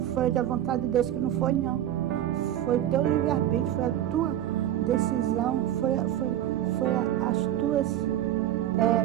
foi da vontade de Deus, que não foi, não. Foi teu livre-arbítrio, foi a tua decisão, foi as tuas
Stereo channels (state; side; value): quieter; left; 12.0 dB